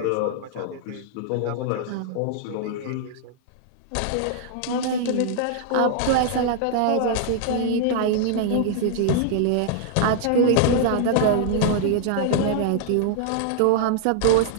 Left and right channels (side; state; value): both; different; correlation -0.01